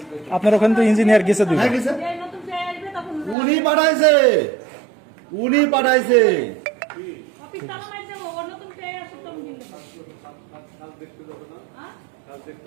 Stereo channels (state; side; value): drops out; left; at 3.4 s